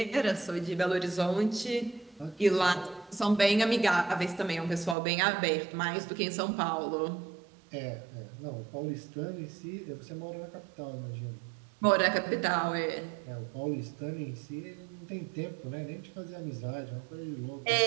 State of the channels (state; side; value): drops out; left; at 5.0 s